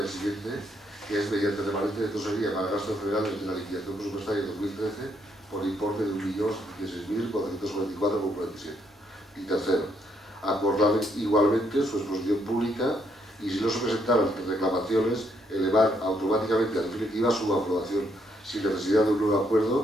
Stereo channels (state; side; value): normal; both; correlation 0.73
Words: al siguiente, que es mediante remanente de tesorería para gastos generales de la liquidación presupuestaria 2013 por importe de 1.016.444,47. Y tercero, acordar igualmente su exposición pública y, si no se presentaran reclamaciones, elevar automáticamente a definitiva su aprobación sin necesidad de un nuevo